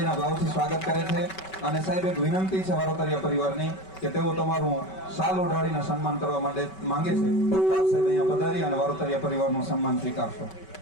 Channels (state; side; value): late; right; 5.2 ms